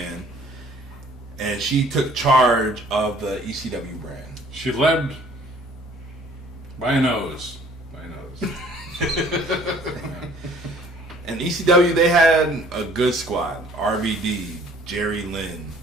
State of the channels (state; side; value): normal; both; correlation 0.55